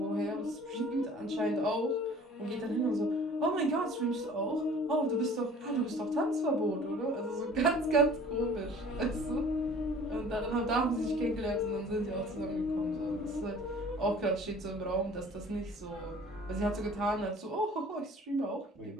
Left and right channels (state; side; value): normal; both; correlation 0.48